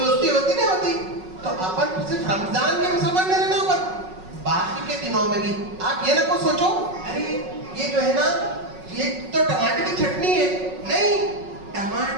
होती नहीं होती? तो अपन सिर्फ रमजान के मुसलमान नहीं रहना, अपन बाकी के दिनों में भी आप ये ना को सोचो, अरे ये जो है ना, ये तो टमाटर की चटनी है। नहीं,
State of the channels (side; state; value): left; late; 5.4 ms